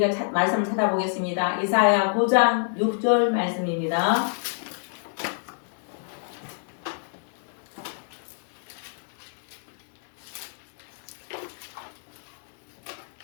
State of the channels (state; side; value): silent; right; digital silence